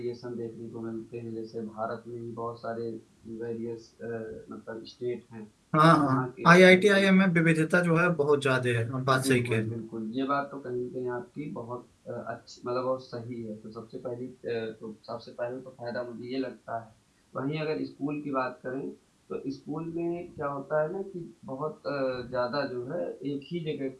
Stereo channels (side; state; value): both; identical; correlation 1.00